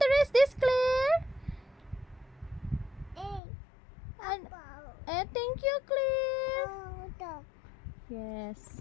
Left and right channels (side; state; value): right; drops out; at 3.4 s